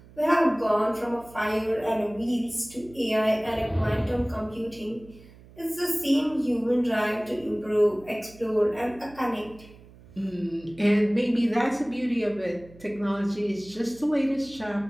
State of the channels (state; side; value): noise; right; hum, 22 dB below the sound